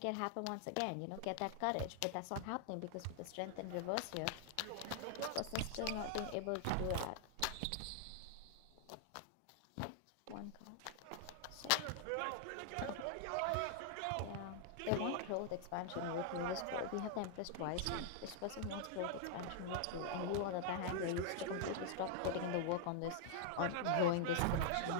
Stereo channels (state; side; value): different; both; correlation 0.00